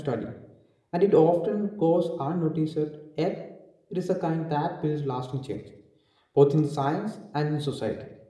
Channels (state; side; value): identical; both; correlation 1.00